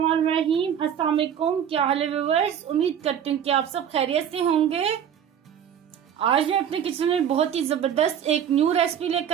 अस्सलाम वालेकुम। क्या हाल है व्यूअर्स? उम्मीद करती हूँ कि आप सब खैरियत से होंगे। आज मैं अपने किचन में बहुत ही जबरदस्त एक न्यू रेसिपी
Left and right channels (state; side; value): quieter; left; 9.0 dB